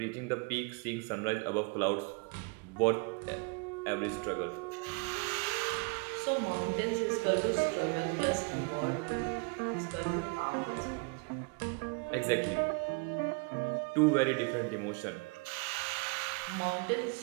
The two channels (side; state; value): left; quieter; 32.4 dB